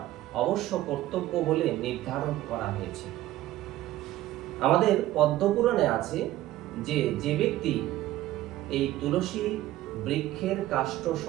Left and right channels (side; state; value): left; quieter; 15.1 dB